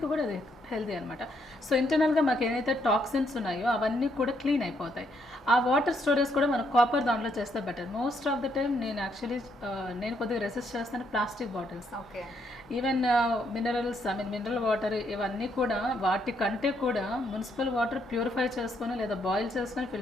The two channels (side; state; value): both; normal; correlation 0.74